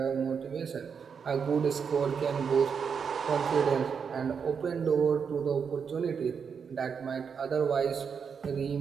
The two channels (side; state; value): left; quieter; 6.5 dB